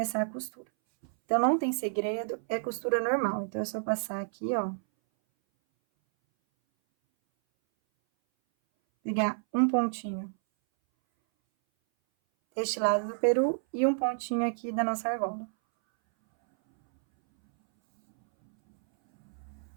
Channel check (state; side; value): silent; left; 58 dB below the other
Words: a costura. Então, não tem segredo, é costura normal. Então, é só passar aqui, ó. Pegar um pontinho deste lado do peru e um pontinho aqui da nossa argola.